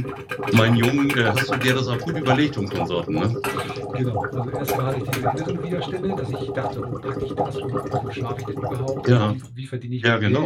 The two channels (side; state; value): both; identical; correlation 1.00